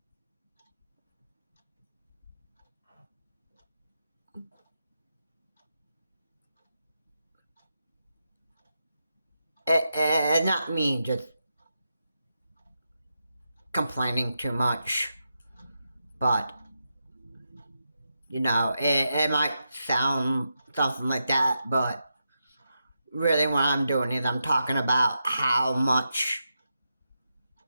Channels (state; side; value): inverted; both; correlation -0.87